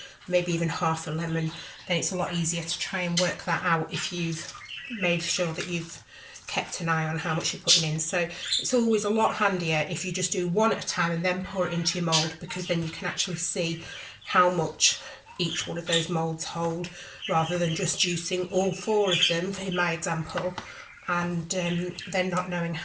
maybe even half a lemon, then it's a lot easier to try and work that out if you've made sure that you've kept an eye on how much you're putting in. So it's always a lot handier if you just do one at a time and then pour it into your mould, because then you can actually see how much each one of those moulds hold, rather than just juicing all 4 of them in my example and then not knowing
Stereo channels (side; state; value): both; identical; correlation 1.00